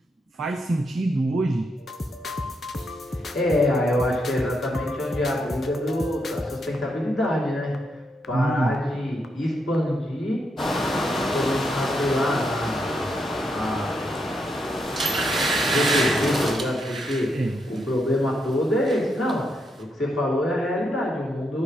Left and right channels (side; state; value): both; normal; correlation 0.80